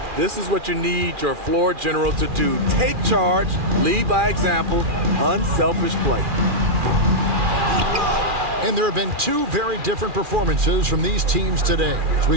This is what you need your floor general to do. Take charge, lead by example, unselfish play. And there have been two very different performances from these teams today as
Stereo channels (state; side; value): late; left; 2.4 ms